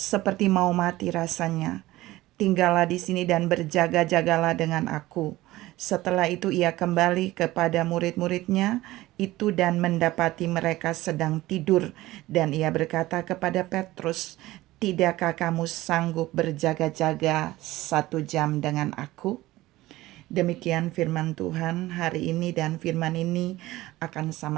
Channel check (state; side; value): quieter; left; 17.5 dB